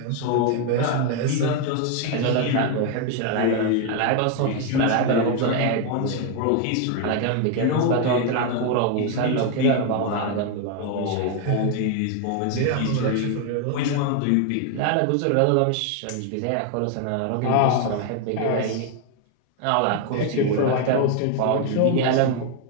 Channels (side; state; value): both; different; correlation 0.01